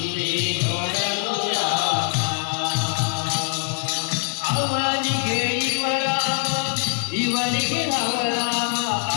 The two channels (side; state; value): right; silent; digital silence